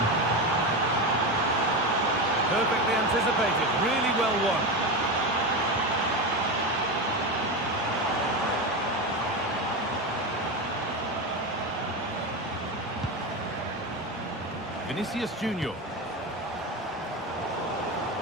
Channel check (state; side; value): normal; both; correlation 0.18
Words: Perfectly anticipated, really well won. Vinicius Junior.